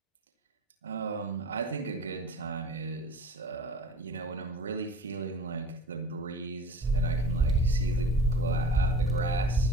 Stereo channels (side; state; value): both; normal; correlation 0.41